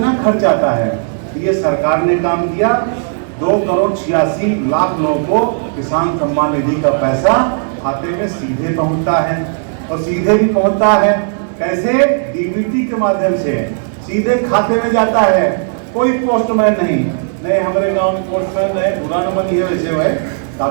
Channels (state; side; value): silent; left; digital silence